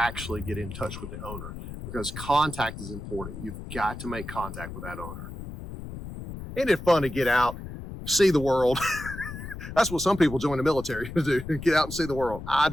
get in touch with the owner, because contact is important. You've got to make contact with that owner. Isn't it fun to get out, see the world? That's what some people join the military to do, get out and see the world. I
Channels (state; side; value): noise; left; rumble, 10 dB below the sound